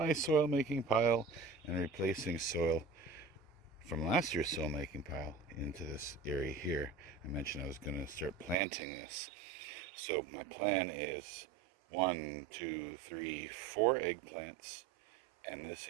soil making pile and replacing soil from last year's soil making pile into this area here, I mentioned I was going to start planting this. So my plan is 1, 2, 3, 4 eggplants, and this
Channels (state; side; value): drops out; left; at 8.6 s